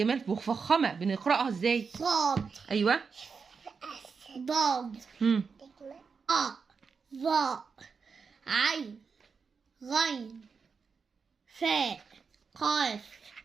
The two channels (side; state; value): left; quieter; 5.4 dB